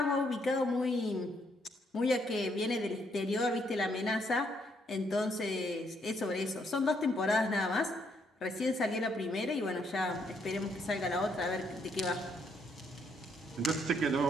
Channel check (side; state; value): both; normal; correlation 0.72